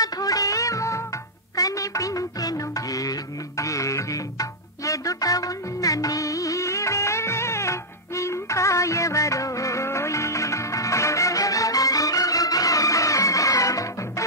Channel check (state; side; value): normal; both; correlation -0.07